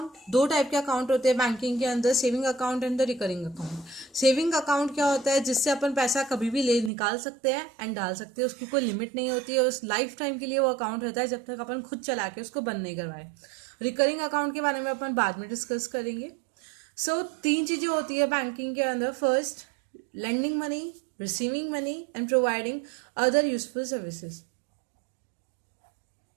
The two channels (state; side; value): drops out; left; at 6.9 s